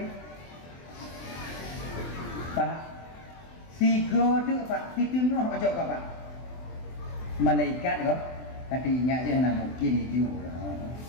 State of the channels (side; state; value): right; late; 24 ms